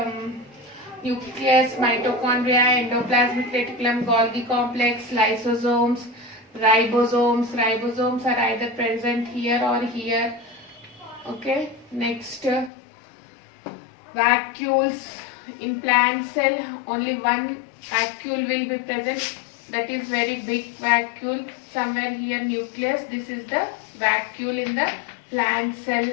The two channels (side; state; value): right; drops out; at 12.7 s